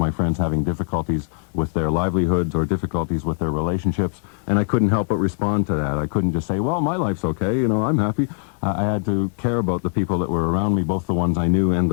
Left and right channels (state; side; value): silent; right; digital silence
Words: friends having difficulties with their livelihoods or difficulties with their relationships, and I couldn't help but respond to that. I couldn't just say, well, my life's okay, I'm happy. I had to care about the people that were around me, both the ones I knew and